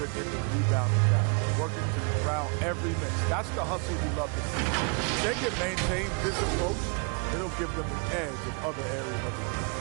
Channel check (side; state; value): left; quieter; 35.5 dB